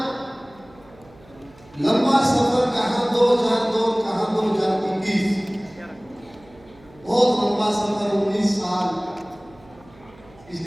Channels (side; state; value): right; noise; hum, 25 dB below the sound